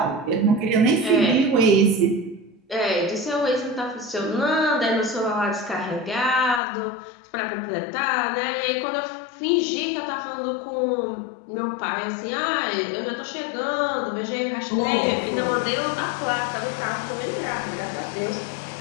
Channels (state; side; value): drops out; right; at 6.6 s